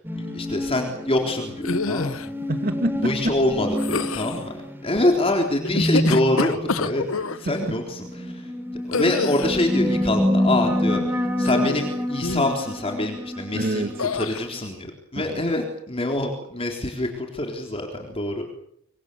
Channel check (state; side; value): normal; both; correlation 0.56